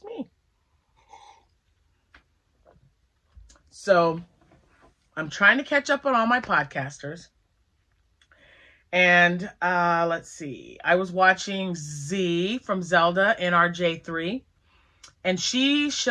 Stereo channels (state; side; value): identical; both; correlation 1.00